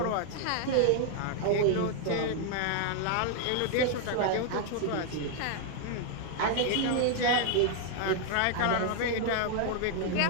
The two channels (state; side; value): different; both; correlation 0.00